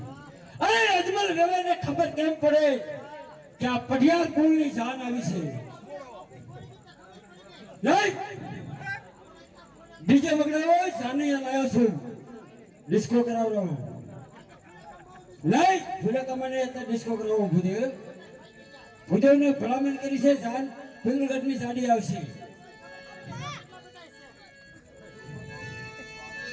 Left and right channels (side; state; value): both; identical; correlation 1.00